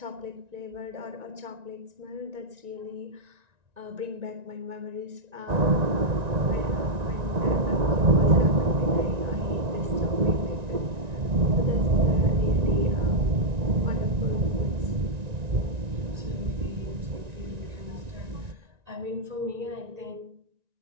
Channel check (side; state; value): left; late; 1.9 ms